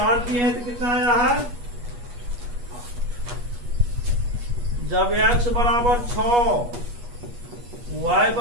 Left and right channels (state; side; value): late; left; 8.3 ms